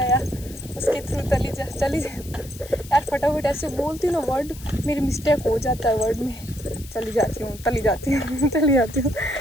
उसके थ्रू चली जा। यार फटाफट ऐसे बोलती हूँ ना वर्ड, मेरी मिस्टेक हो जाता है वर्ड में। चली जाती हूँ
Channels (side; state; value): left; noise; hiss, 18 dB below the sound